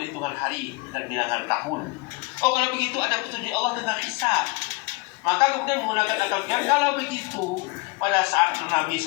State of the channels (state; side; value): quieter; right; 25.6 dB